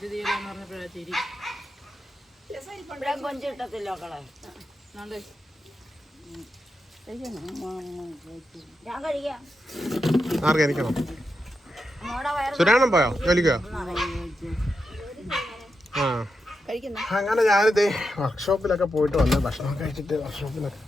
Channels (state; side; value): normal; both; correlation 0.87